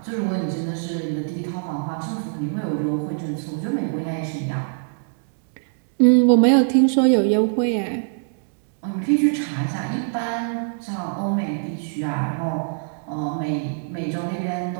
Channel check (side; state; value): left; silent; digital silence